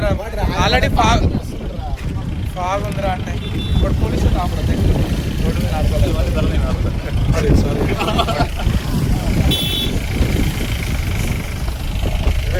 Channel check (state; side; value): identical; both; correlation 1.00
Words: ఆల్రెడీ ఫాగ్ ఉందిరా అంటే ఇప్పుడు పోలీసులు ఆపడతాయి. రోడ్డు మీద ఆడుకోవాలి. సారీ.